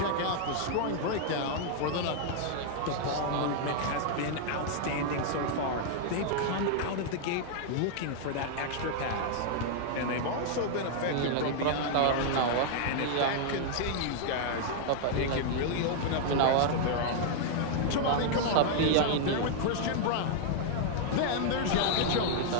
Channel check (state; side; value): different; both; correlation -0.01